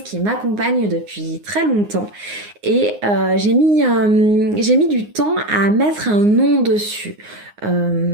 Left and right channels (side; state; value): left; late; 9.6 ms